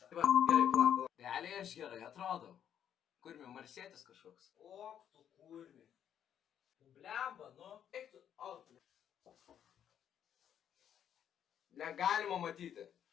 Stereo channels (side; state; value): right; quieter; 9.4 dB